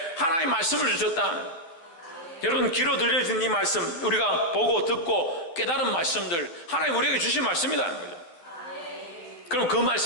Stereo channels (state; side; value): late; right; 12 ms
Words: 하나님의 말씀을 주셨다. 여러분 귀로 들려진 이 말씀, 우리가 보고 듣고 깨달은 말씀들, 하나님 우리에게 주신 말씀이라는 거죠. 그럼 그